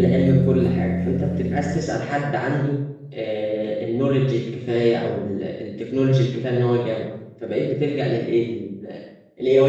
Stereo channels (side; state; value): both; identical; correlation 1.00